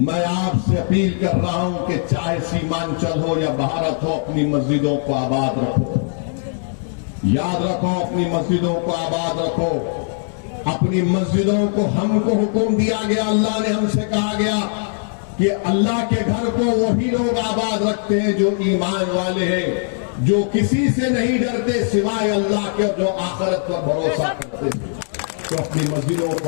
आपसे अपील कर रहा हूं कि चाहे सीमांचल हो या भारत हो, अपनी मस्जिदों को आबाद रखो। याद रखो, अपनी मस्जिदों को आबाद रखो। अपनी मस्जिदों को हमको हुक्म दिया गया, अल्लाह ने हमसे कहा गया कि अल्लाह के घर को वही लोग आबाद रखते हैं जो ईमान वाले हैं, जो किसी से नहीं डरते सिवाय अल्लाह के, जो आखिरत पर भरोसा करते हैं। तो अपनी मस्जिदों को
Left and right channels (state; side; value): silent; right; digital silence